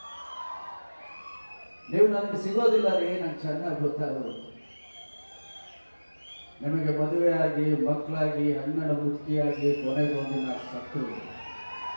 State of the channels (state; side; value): inverted; both; correlation -1.00